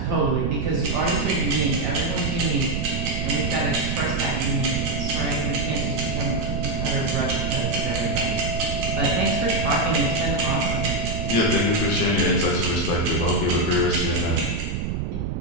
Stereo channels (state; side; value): noise; right; rumble, 2 dB below the sound